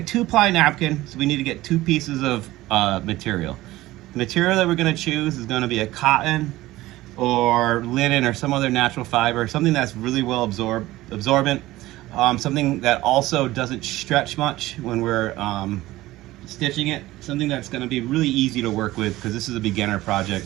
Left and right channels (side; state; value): left; quieter; 17.2 dB